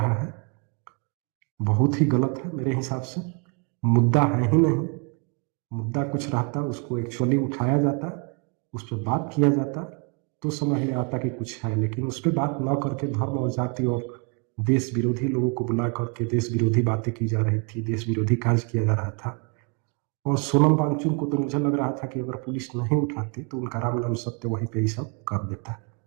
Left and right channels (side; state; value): left; quieter; 33.9 dB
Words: है बहुत ही गलत है मेरे हिसाब से। मुद्दा है ही नहीं। मुद्दा कुछ रहता, उसको एक्चुअली उठाया जाता, उस पर बात किया जाता, तो समझ में आता कि कुछ है। लेकिन उस पर बात न करके धर्म और जाति और देश विरोधी लोगों को बुला करके देश विरोधी बातें की जा रही थी, देश विरोधी कार्य किया जा रहा था। और सोनम वांगचुक को तो मुझे लग रहा था कि अगर पुलिस नहीं उठाती तो उनका राम नाम सत्य वहीं पे ही सब कर देता।